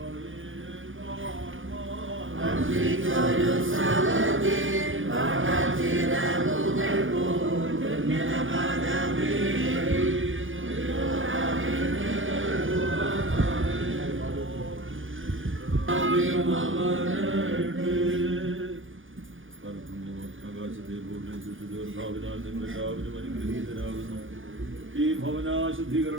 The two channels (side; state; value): left; late; 0.58 ms